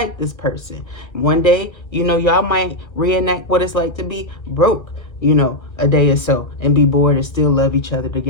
this person. One day, you know, y'all might reenact what it's like to be broke, you know, a day or so, and be bored and still love each other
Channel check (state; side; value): late; right; 1.4 ms